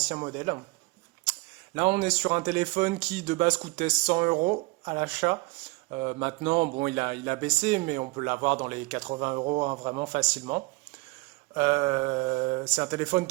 modèles. Là, on est sur un téléphone qui de base coûtait 100 euros à l'achat. Maintenant, bon, il a baissé, mais on peut l'avoir dans les 80 euros hein, vraiment facilement. C'est un téléphone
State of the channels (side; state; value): left; quieter; 24.9 dB